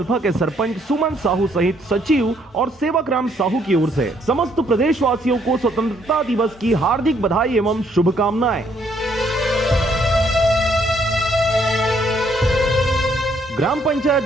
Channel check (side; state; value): both; normal; correlation 0.69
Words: के सरपंच सुमन साहू सहित सचिव और सेवक राम साहू की ओर से समस्त प्रदेशवासियों को स्वतंत्रता दिवस की हार्दिक बधाई एवं शुभकामनाएं। ग्राम